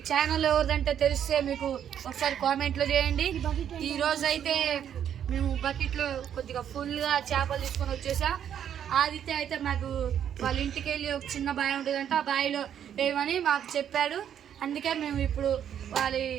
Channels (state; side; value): quieter; left; 9.4 dB